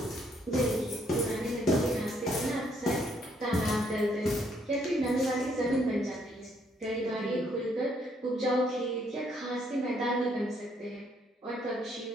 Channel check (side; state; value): both; normal; correlation 0.70